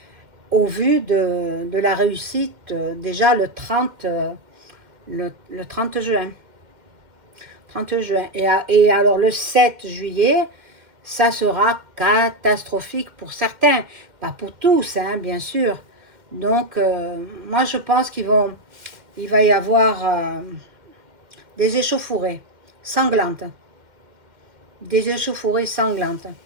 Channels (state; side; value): late; left; 2.1 ms